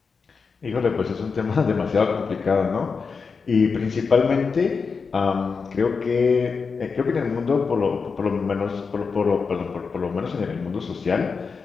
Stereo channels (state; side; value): quieter; right; 5.1 dB